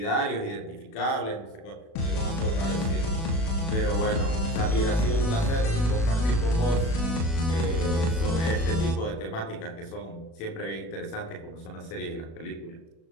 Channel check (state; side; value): late; right; 36 ms